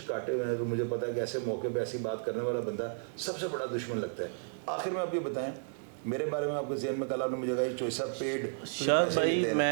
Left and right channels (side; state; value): left; silent; digital silence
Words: کاٹے ہوئے ہیں, تو مجھے پتا ہے کہ ایسے موقع پہ ایسی بات کرنے والا بندہ سب سے بڑا دشمن لگتا ہے. آخر میں آپ یہ بتائیں میرے بارے میں, آپ کے ذہن میں کل آپ نے مجھے کہا یہ چوائسا پیڈ پیسے لیتے